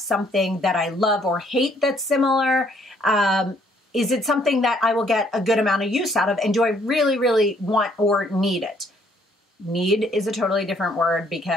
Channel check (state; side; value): normal; both; correlation 0.65